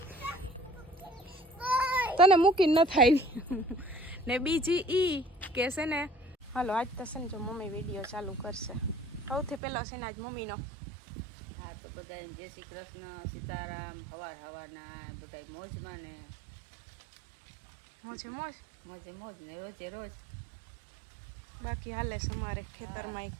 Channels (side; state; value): left; drops out; at 9.6 s